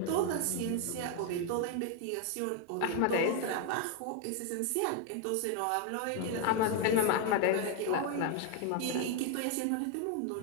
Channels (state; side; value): different; both; correlation 0.01